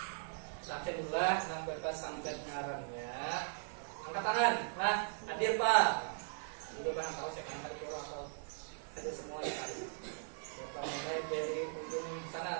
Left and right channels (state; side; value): silent; left; digital silence